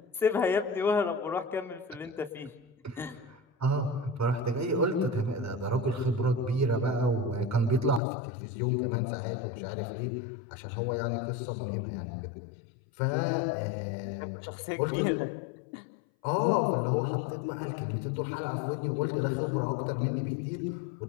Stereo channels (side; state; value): right; drops out; at 8.0 s